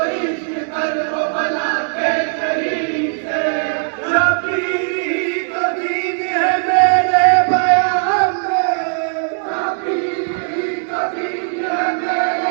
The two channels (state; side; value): silent; left; digital silence